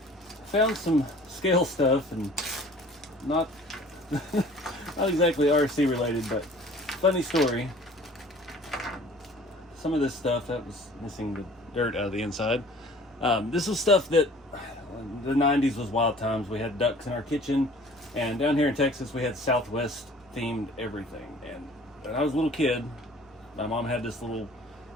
Found some scale stuff, and not not exactly RC related, but funny story. Some of this stuff that was missing the dirt out of the inside. This was stuff that the 90s was wild times. We had ducks in our kitchen, and down here in Texas we had Southwest themed everything. And when I was a little kid, my mom had this little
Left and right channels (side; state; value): both; normal; correlation 0.49